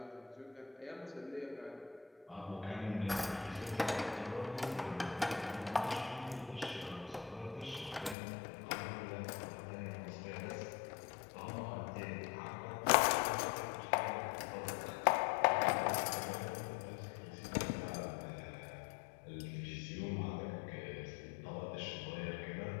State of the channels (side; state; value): right; drops out; at 8.2 s